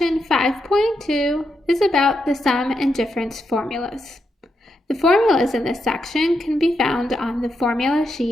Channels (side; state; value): both; normal; correlation 0.83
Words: 5.2 is about the sum and difference formulas. The formulas in this section can be found on the formula